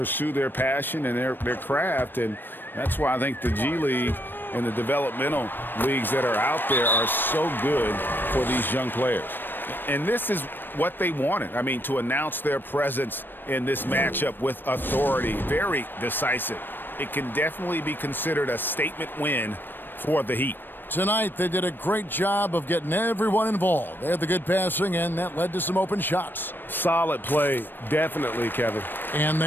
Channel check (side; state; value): right; late; 0.094 ms